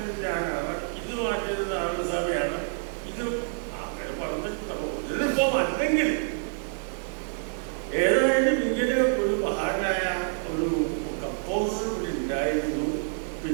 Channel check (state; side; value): silent; left; digital silence